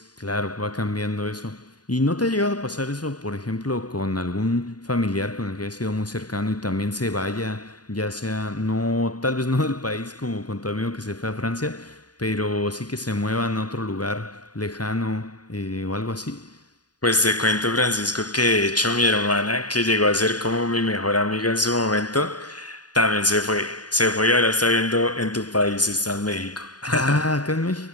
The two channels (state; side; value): late; right; 0.69 ms